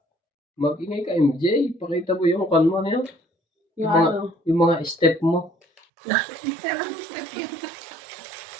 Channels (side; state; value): left; drops out; at 5.9 s